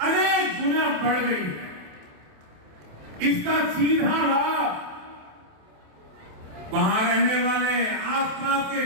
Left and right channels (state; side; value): late; left; 27 ms